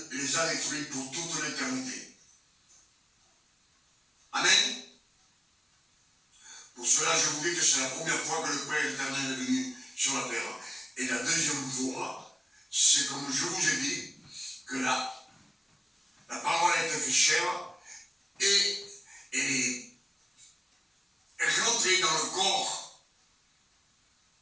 les a détruits pour toute l'éternité. Amen. Pour cela, je vous dis que c'est la première fois que le Père éternel est venu sur la terre. Et la deuxième fois, c'est comme je vous ai dit, que la parole a été faite chair et est rentrée dans le corps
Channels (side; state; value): both; normal; correlation 0.96